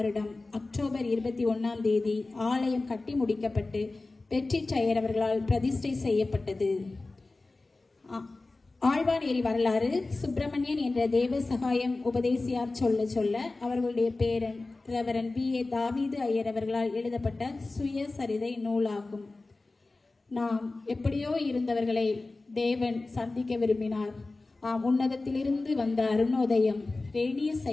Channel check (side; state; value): right; quieter; 3.3 dB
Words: அக்டோபர் 21 தேதி ஆலயம் கட்டி முடிக்கப்பட்டு பெட்ரி டயர் அவர்களால் பிரதிஷ்டை செய்யப்பட்டது. ஆழ்வானேரி வரலாறு. சுப்பிரமணியன் என்ற தேவ சகாயம் உபதேசியார் சொல்ல சொல்ல அவர்களுடைய பேரன் ரெவரன் B.A. தாவீது ஐயர் அவர்களால் எழுதப்பட்ட சுயசரிதை நூலாகும். நாம் எப்படியோ இருந்தவர்களை தேவன் சந்திக்க விரும்பினார். உன்னதத்திலிருந்து வந்த அருணோதயம் ரேனியஸ்